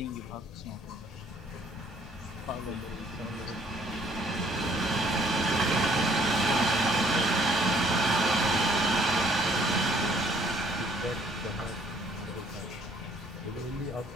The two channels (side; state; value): both; normal; correlation 0.62